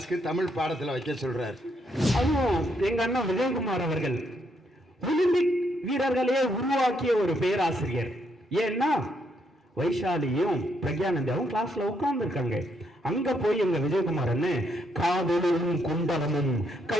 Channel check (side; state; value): both; normal; correlation 0.75